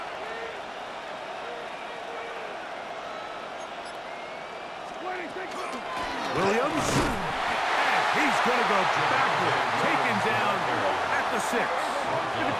Williams, and he's going to go backward, taken down at the 6.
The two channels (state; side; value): identical; both; correlation 1.00